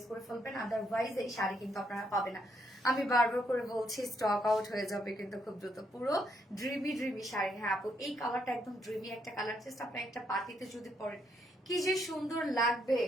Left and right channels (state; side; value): normal; both; correlation 0.75